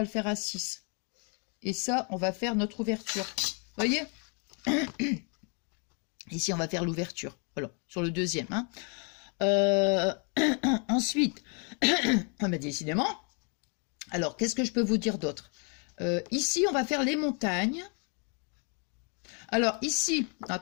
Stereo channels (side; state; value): right; quieter; 37.6 dB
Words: le faire à 6. Et ça, on va faire notre ouverture. Vous voyez? Ici, on va faire l'ouverture. Voilà, sur le deuxième. Hein. Ensuite, mais décidément, alors, qu'est-ce que je peux vous dire d'autre? Ici, on va faire les montagnes. Alors, ici,